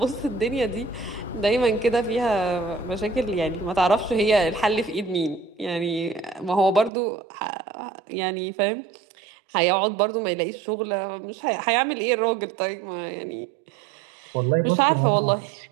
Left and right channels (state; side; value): drops out; left; at 6.9 s